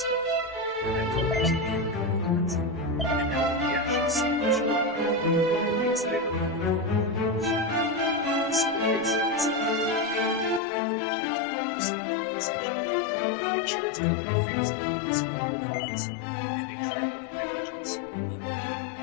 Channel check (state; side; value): drops out; right; at 10.6 s